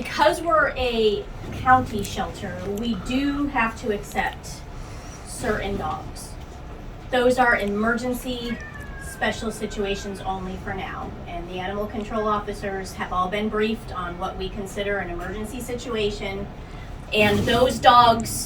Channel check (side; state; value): both; identical; correlation 1.00